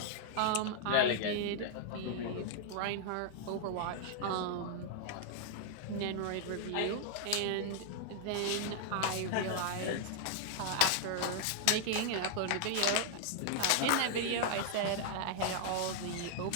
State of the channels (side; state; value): both; different; correlation 0.00